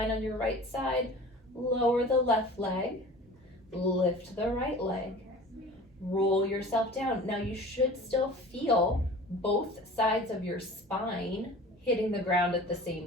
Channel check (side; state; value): both; normal; correlation 0.41